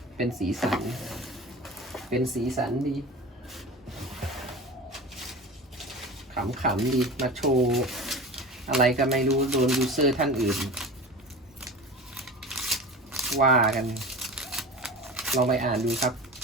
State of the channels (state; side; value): normal; both; correlation 0.33